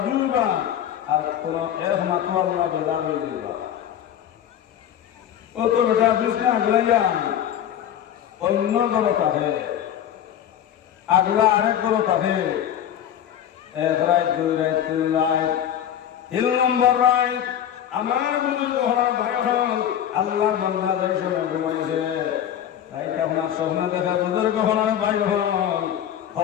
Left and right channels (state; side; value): quieter; right; 10.2 dB